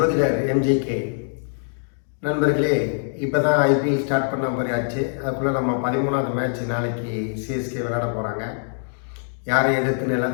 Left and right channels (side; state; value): right; silent; digital silence